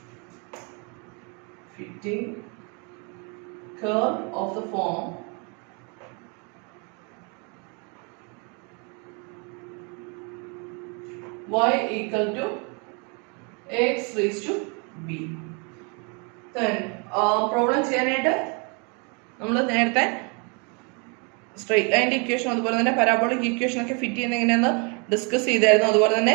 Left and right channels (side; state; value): left; quieter; 34.3 dB